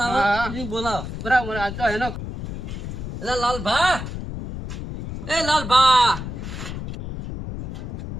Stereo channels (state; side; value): noise; left; rumble, 7 dB below the sound